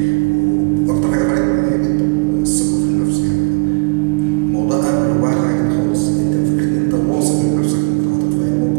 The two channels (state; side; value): silent; left; digital silence